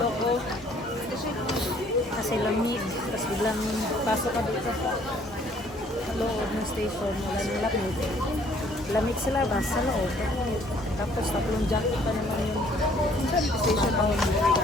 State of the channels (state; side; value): normal; both; correlation 0.60